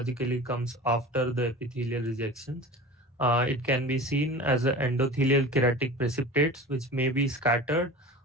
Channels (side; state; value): both; normal; correlation 0.36